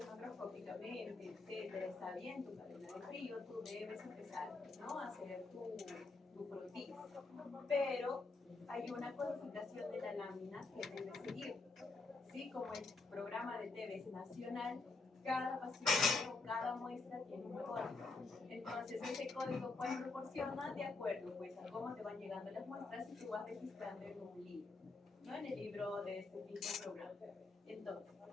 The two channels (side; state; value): right; quieter; 3.7 dB